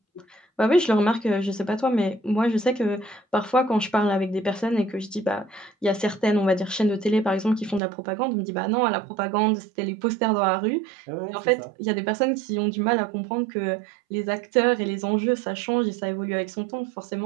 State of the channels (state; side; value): drops out; left; at 7.8 s